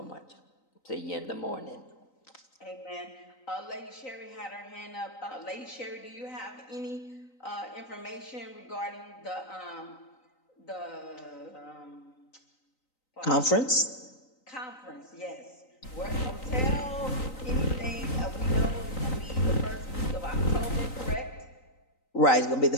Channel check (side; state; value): right; late; 3.9 ms